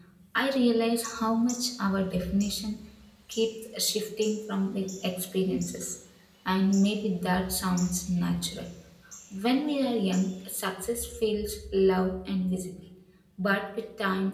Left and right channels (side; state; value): both; identical; correlation 1.00